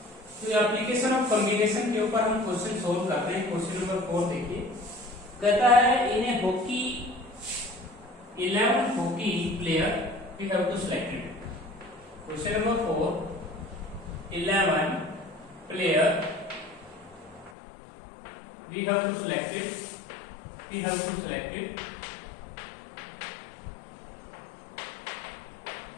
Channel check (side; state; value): right; drops out; at 17.5 s